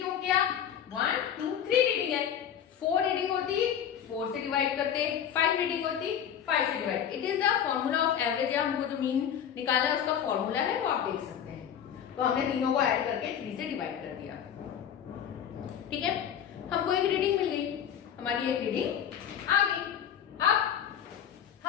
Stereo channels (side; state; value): right; quieter; 9.1 dB